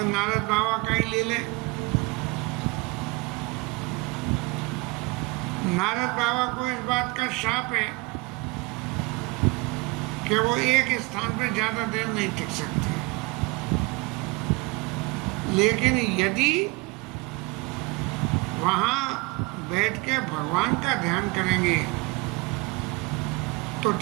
नारद बाबा का ही ले लें। नारद बाबा को इस बात का शाप है कि वो एक स्थान पर ज्यादा देर नहीं टिक सकते, लेकिन यदि वहां बैठ के भगवान का ध्यान करेंगे तो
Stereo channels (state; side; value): quieter; left; 25.5 dB